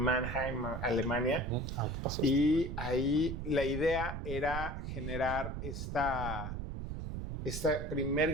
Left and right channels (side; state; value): right; noise; rumble, 5 dB below the sound